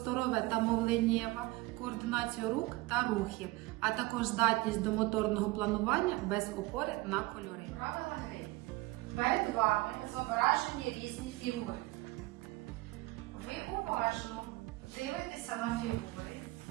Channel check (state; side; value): quieter; left; 20.4 dB